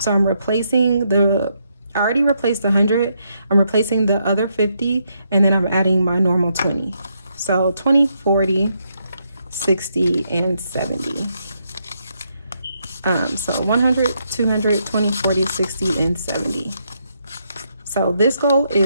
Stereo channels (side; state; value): both; inverted; correlation -0.78